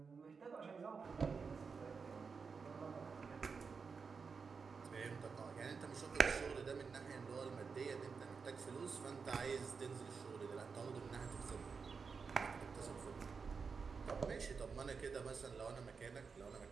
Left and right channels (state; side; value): quieter; left; 5.3 dB